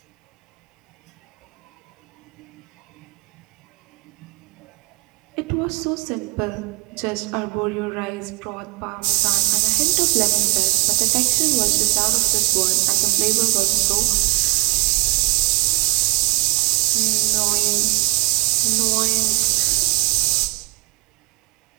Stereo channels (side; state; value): left; quieter; 23.6 dB